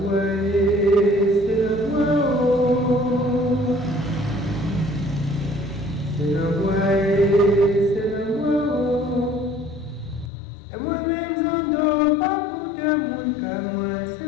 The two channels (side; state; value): right; drops out; at 10.3 s